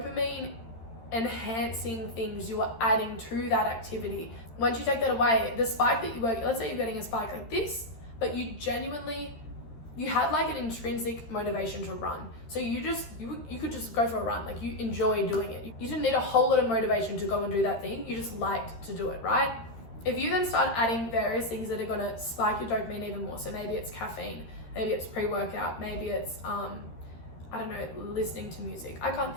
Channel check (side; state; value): right; late; 13 ms